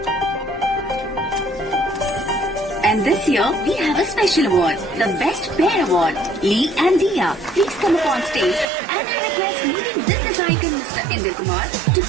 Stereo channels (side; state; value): left; drops out; at 8.7 s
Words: And this year, we have a special award, the Best Pair Award. Lee and Dia, please come up on stage, and I request leading business icon Mr. Indra Kumar to